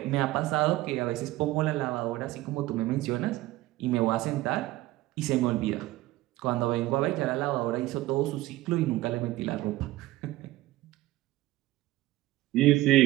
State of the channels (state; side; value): quieter; left; 17.4 dB